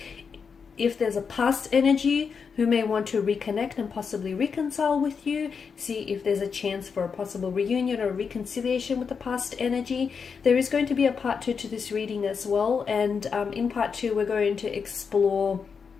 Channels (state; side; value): quieter; right; 5.9 dB